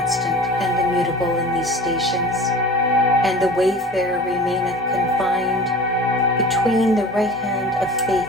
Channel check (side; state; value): both; normal; correlation 0.39